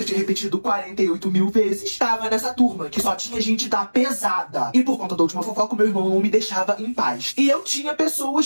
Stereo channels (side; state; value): both; inverted; correlation -1.00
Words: tinha repetido 48 mil vezes, estava nessa turma, que só tinha gente da pesada. E por conta da última fofoca, o meu irmão não me deixava em paz. E eu tinha